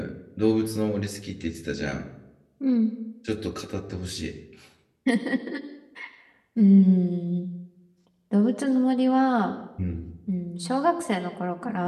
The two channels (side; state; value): both; identical; correlation 1.00